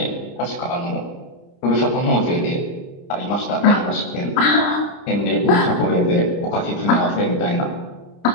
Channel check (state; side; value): late; right; 30 ms